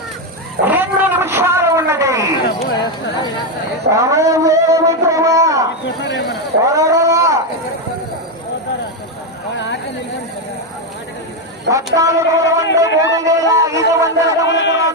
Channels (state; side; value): normal; both; correlation 0.06